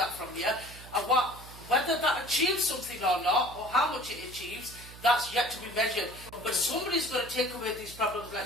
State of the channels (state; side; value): noise; right; hum, 17 dB below the sound